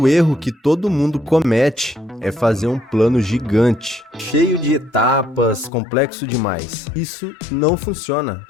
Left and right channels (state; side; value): drops out; right; at 5.7 s